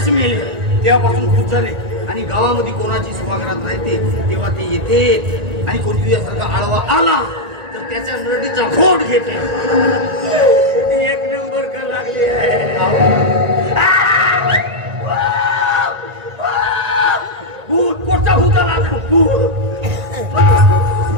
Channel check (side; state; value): left; late; 1.9 ms